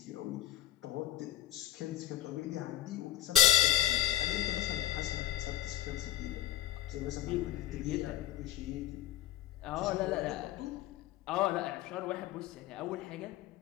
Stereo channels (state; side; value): quieter; right; 12.8 dB